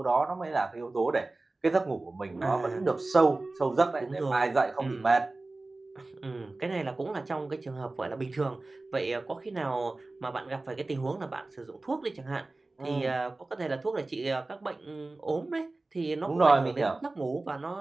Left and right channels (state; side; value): quieter; left; 3.1 dB